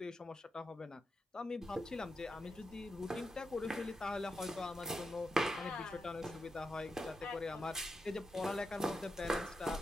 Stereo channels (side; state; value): both; normal; correlation 0.87